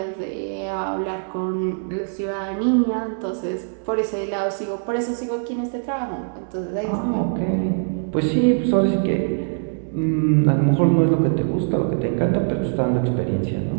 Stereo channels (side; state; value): left; silent; digital silence